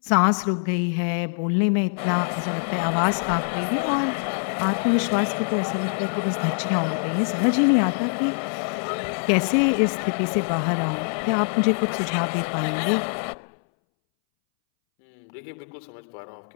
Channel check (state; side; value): silent; right; 63 dB below the other